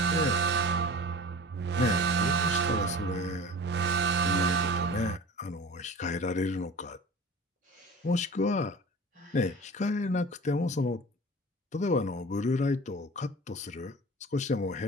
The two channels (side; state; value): both; normal; correlation 0.39